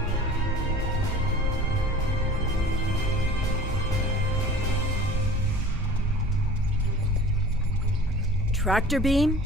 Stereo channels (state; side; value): normal; both; correlation 0.43